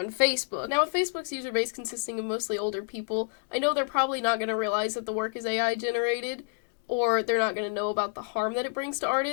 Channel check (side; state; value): right; silent; digital silence